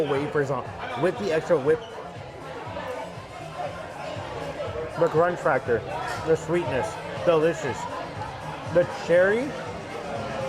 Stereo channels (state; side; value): identical; both; correlation 1.00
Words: wafers on with the extra whip, the crunch factor, the sweetness, delicious. The cherry,